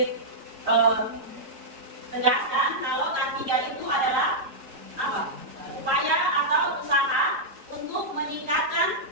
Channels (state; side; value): late; left; 3.8 ms